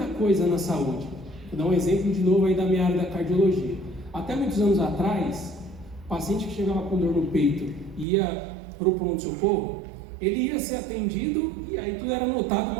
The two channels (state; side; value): drops out; left; at 8.1 s